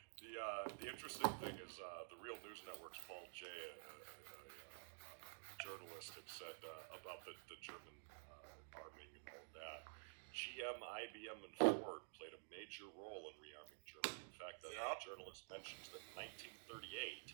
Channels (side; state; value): left; silent; digital silence